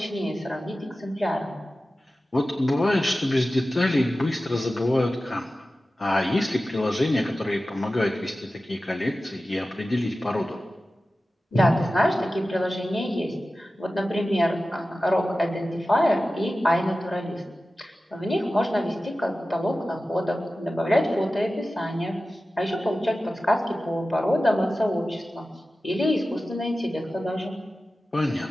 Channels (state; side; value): normal; both; correlation 0.95